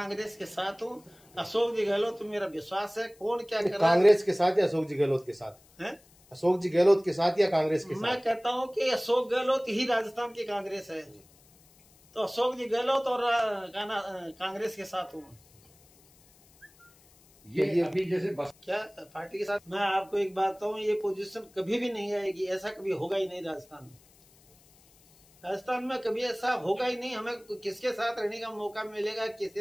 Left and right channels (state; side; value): noise; left; hiss, 28 dB below the sound